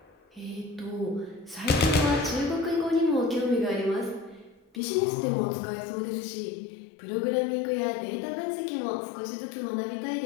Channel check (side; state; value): right; drops out; at 4.8 s